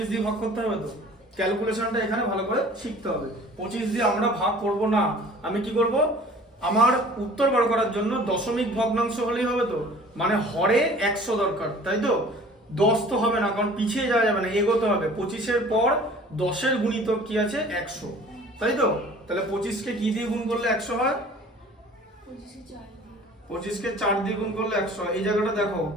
দিয়ে ভাগ করতে হবে, তো ক্যালকুলেশনটা এখানে ভালো করে শিখতে হবে। 25 দিয়ে আমরা ভাগ করব না, আমি কি করব? আমার উত্তর বার করার জন্য দশমিক ভগ্নাংশ হলেই হবে, তো মানে হরে 100 দরকার, তাই তো? 10 তো হবে না, কারণ পিছিয়ে যাওয়া যাবে না, এগোতে হবে। 25-এর পর 10-এর গুণিতক কি আছে? 100, তাই তো? তাহলে 25-কে কি দিয়ে গুণ করলে 100 হয়? 25-কে 4 দিয়ে গুণ করলে 100। এই জায়গাটা দেখো,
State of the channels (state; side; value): normal; both; correlation 0.48